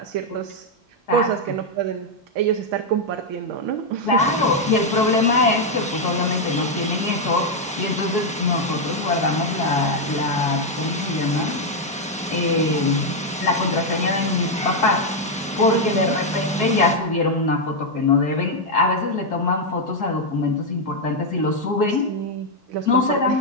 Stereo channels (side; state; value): both; normal; correlation 0.01